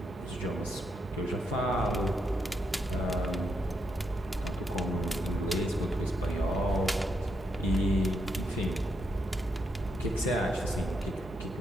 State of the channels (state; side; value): normal; both; correlation 0.80